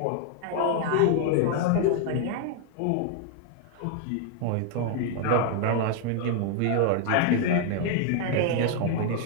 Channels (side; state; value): both; different; correlation 0.00